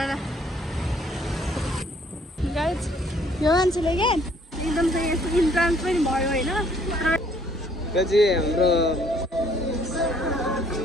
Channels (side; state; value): both; normal; correlation 0.62